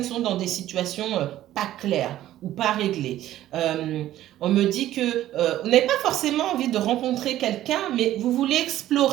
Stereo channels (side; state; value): left; quieter; 13.6 dB